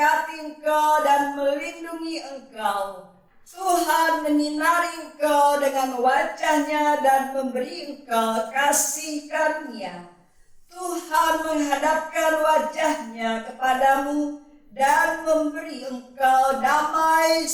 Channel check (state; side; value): identical; both; correlation 1.00